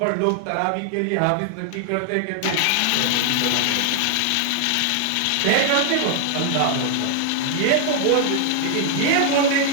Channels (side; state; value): both; different; correlation 0.00